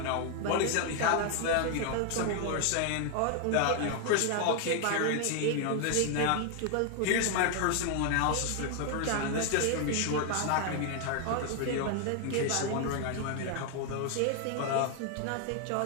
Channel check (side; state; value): both; different; correlation 0.00